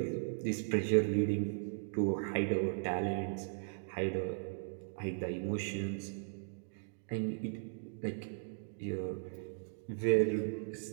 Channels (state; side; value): silent; left; digital silence